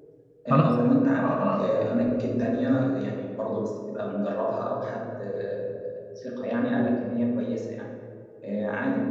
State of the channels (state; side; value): identical; both; correlation 1.00